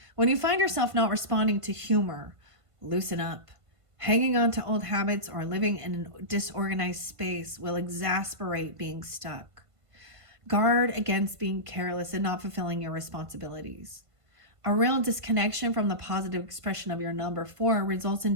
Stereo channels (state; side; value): late; left; 1.5 ms